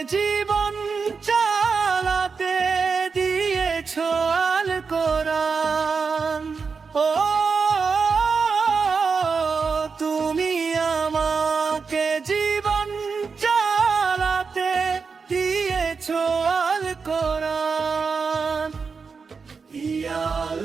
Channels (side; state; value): left; quieter; 5.2 dB